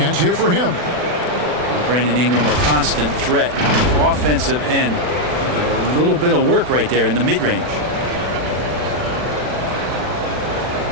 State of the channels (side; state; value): left; late; 40 ms